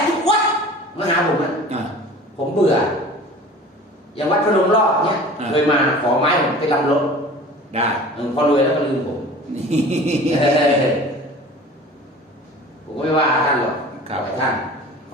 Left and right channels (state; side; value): normal; both; correlation 0.42